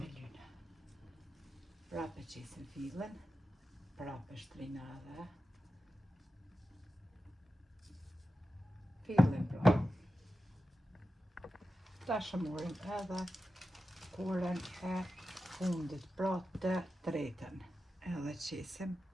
e lyna. Prapë qesim fillin, prapë shtrina edhe fillin pra. Tash e marrim edhe korën e fundit, pra të tretën, edhe qesim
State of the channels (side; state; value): both; normal; correlation 0.91